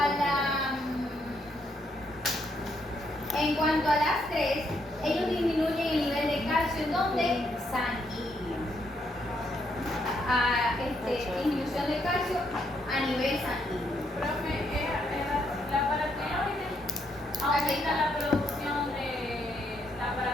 En cuanto a las tres, ellos disminuyen el nivel de calcio en donde sanguíneo. Disminución de calcio a nivel sanguíneo. Profe, la paratiroide aumenta la producción de la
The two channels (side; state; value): both; normal; correlation 0.75